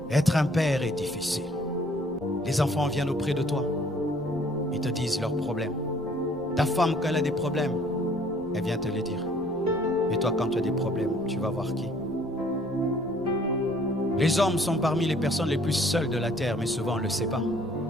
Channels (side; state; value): right; noise; rumble, 22 dB below the sound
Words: Être un père est difficile. Les enfants viennent auprès de toi. Ils te disent leurs problèmes. Ta femme, quand elle a des problèmes, elle vient te les dire. Et toi, quand tu as des problèmes, tu vas voir qui? Les hommes sont parmi les personnes les plus seules de la terre, mais souvent on ne le sait pas.